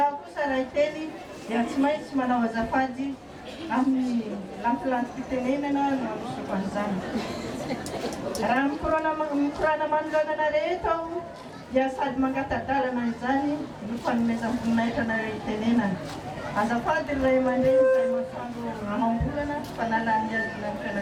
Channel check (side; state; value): both; identical; correlation 1.00